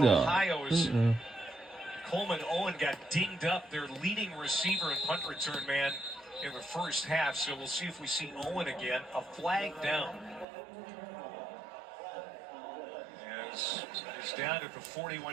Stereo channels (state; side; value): drops out; left; at 10.5 s